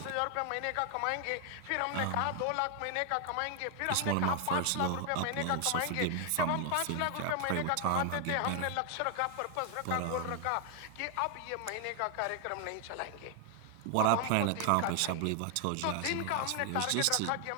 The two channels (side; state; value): both; different; correlation 0.00